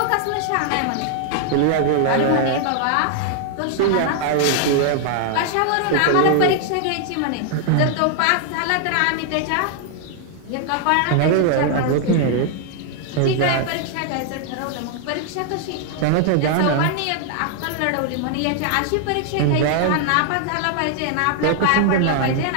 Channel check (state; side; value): different; both; correlation 0.00